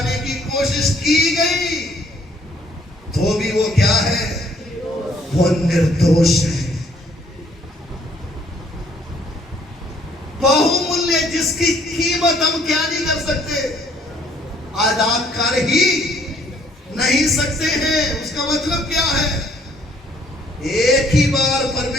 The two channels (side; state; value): both; normal; correlation 0.63